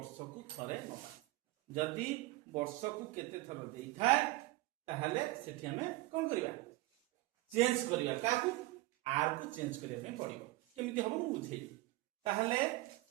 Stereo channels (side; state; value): left; quieter; 19.3 dB